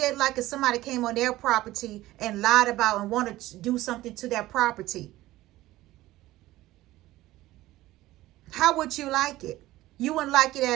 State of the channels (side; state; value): left; quieter; 16.6 dB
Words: like if somebody came on their property and lied about and wanted to do something to their property? How would you like it? You wouldn't like it